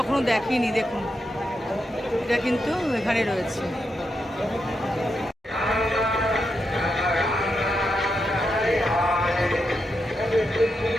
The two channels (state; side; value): normal; both; correlation 0.84